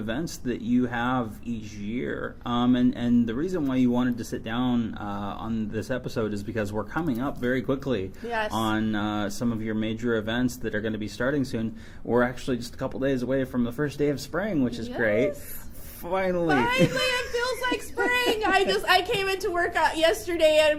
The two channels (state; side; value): identical; both; correlation 1.00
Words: that you have each year, and the reason why you wanted to sit down on this episode is because we're coming up very quickly on some of your major events that are going to be starting soon. We're actually just a couple days away from the first day of spring, which is great. Finally, it feels like spring. I came into work yesterday and